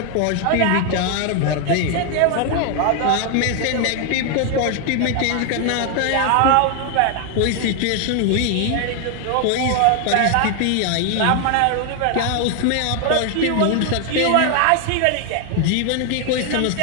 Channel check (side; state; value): both; different; correlation 0.00